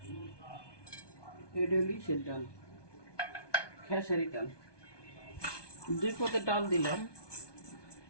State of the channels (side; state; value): right; late; 1.2 ms